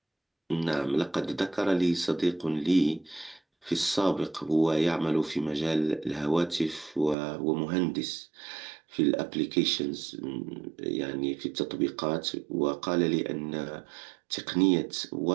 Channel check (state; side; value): drops out; left; at 7.2 s